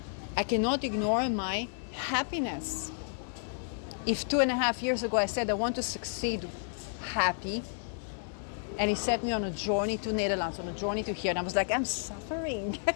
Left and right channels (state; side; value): silent; right; digital silence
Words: I cannot ignore my happiness. If 2.5 years ago I said I want to succeed happy, and he set me on a journey to Netherlands, on a journey to here, and I was like, I'm suffering